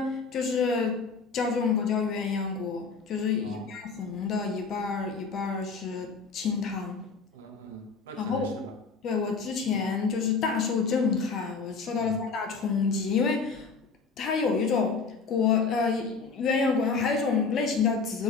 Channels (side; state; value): right; quieter; 4.8 dB